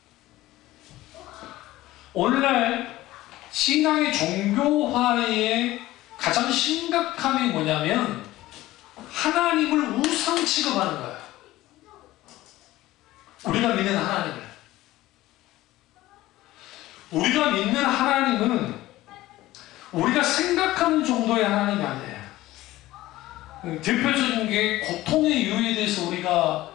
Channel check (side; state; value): right; quieter; 16.7 dB